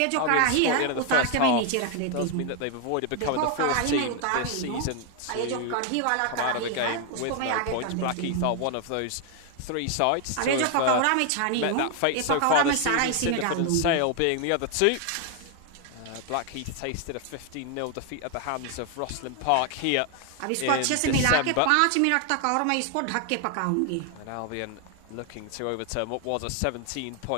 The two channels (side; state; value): both; different; correlation 0.00